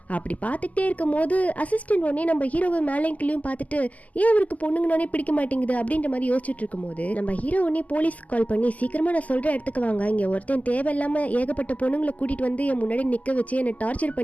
அப்படி பார்த்துக்கிட்டே இருக்கும் போது அசிஸ்டன்ட் உடனே நம்ம ஹீரோவை மேலேயும் கீழேயும் பார்த்துட்டு, ஏன் அவருக்கு பொண்ணுங்கனாலே பிடிக்க மாட்டேங்குது அப்படின்ற மாதிரி யோசிச்சுட்டு இருக்கும் போது நம்ம ஹீரோ உடனே போலீஸ்க்கு கால் பண்ணி, சீக்கிரமாக நான் சொல்கிற இடத்துக்கு வாங்க, இங்கே ஒருத்தன் தேவையில்லாமல் ஏகப்பட்ட பொண்ணுங்களை கூட்டிகிட்டு வந்து என் முன்னாடி நிற்க வச்சு என்னை டார்ச்சர்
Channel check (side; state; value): right; late; 0.075 ms